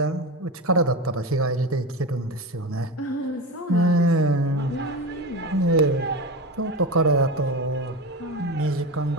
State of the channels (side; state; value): both; normal; correlation 0.22